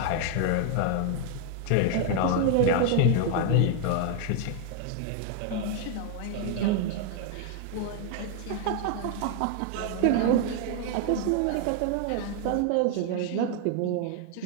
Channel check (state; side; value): different; both; correlation 0.00